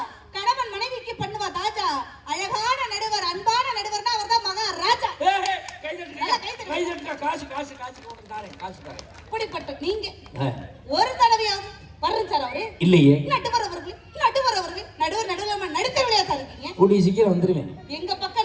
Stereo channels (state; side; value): identical; both; correlation 1.00